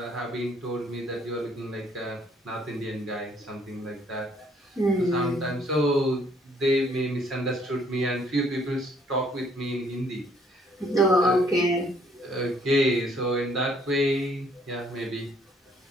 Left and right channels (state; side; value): normal; both; correlation 0.64